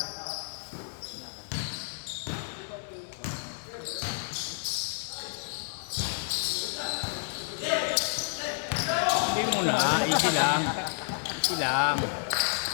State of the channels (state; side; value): silent; right; digital silence